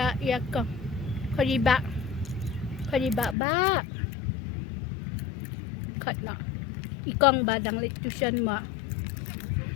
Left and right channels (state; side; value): drops out; right; at 3.4 s